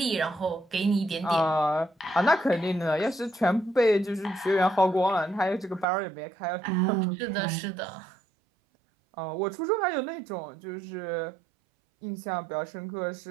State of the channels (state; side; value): drops out; left; at 5.9 s